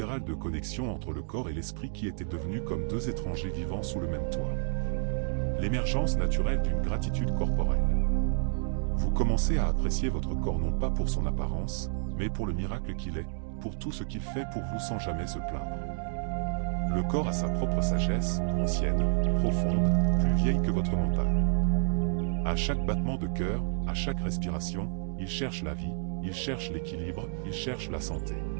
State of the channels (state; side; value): silent; left; digital silence